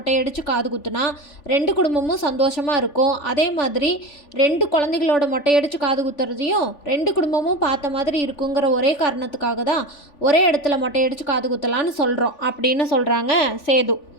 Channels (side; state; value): right; late; 3.4 ms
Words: காது குத்துனா 2 குடும்பமும் சந்தோஷமாக இருக்கும். அதே மாதிரி 2 குழந்தைகளோட மொட்டையடிச்சு காது குத்துறதையும் 2 குடும்பமும் பார்த்த மாதிரி இருக்குங்கிற ஒரே காரணத்துக்காக தான் ஒரே இடத்துல மொட்டையடிச்சு காது குத்தலான்னு சொல்கிறோம் அப்படின்னு சொல்கிறாங்க சேது.